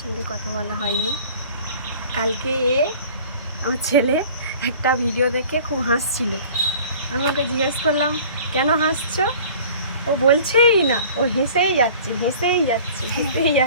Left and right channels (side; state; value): both; inverted; correlation -0.46